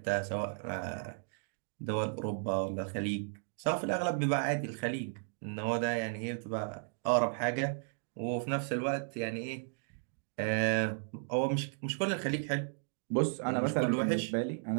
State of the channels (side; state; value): left; silent; digital silence